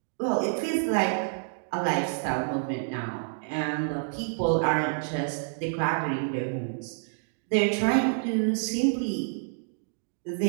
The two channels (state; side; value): silent; left; digital silence